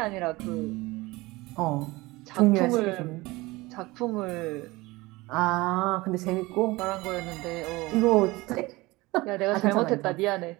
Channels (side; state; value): left; quieter; 21.4 dB